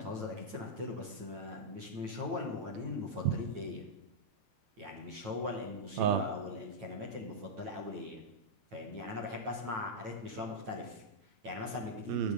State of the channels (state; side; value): late; left; 9.2 ms